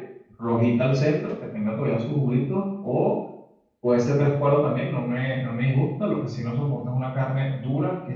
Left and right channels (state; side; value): identical; both; correlation 1.00